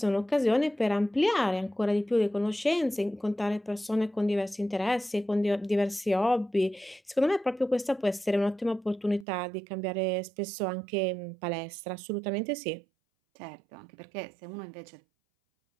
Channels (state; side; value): drops out; left; at 9.2 s